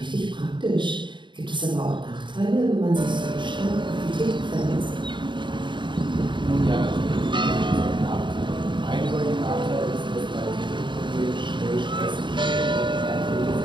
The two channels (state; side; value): late; left; 0.23 ms